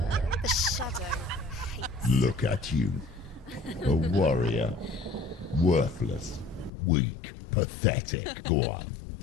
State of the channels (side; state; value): right; drops out; at 6.7 s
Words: The shadow hates. Look at you. A warrior. Worthless. Weak. Pathetic. Go on.